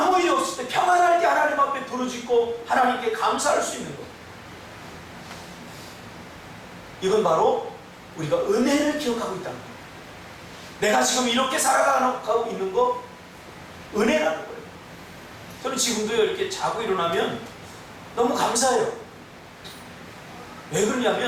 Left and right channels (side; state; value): both; identical; correlation 1.00